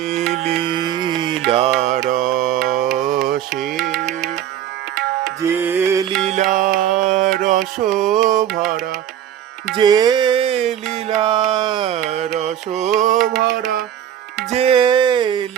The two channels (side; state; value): left; quieter; 10.6 dB